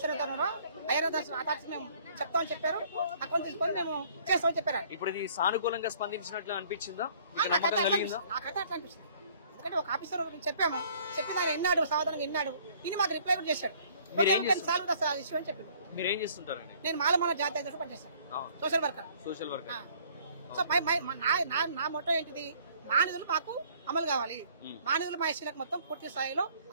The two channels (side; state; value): both; inverted; correlation -0.58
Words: అయ్యారు మేము చెప్తామని చెప్పారు, అకౌంట్ తీసుకొని మేము చేస్తామని చెప్పారు. ఇప్పుడు ఇది సానుకూలంగా స్పందించినట్లు అనిపించిందా, నమ్మకం కలిగిందా? నాకైతే అట్లా అనిపిస్తుంది. ఎందుకంటే ఒక ఆఫీసర్ చెప్పాము, చెప్పిన ఆయన విన్నాడు, సాధారణంగా విన్నాడు, ఇది మాకు రిప్లై కూడా చేశాడు. ఇష్యూ అని చెప్పాడు. మీరేం చేస్తుంటారు? నేను మాలమాల జాతీయ పనిచేస్తాను, సోషల్ వర్కర్. సో నా మొత్తం ఏంటిది, మా నిధులు మాకు అమలు కావాలి, మా నిధులు మా ఎస్సీలకు మొత్తం పూర్తి స్థాయిలో